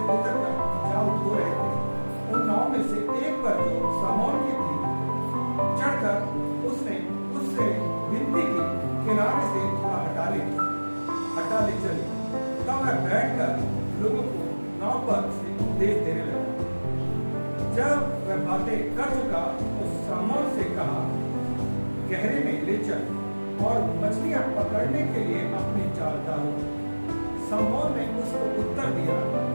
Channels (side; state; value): both; inverted; correlation -1.00